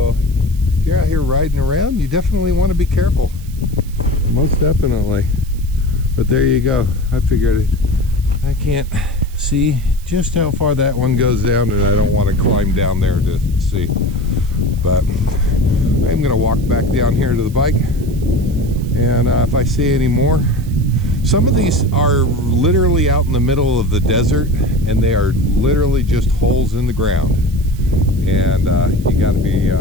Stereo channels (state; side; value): noise; right; hiss, 23 dB below the sound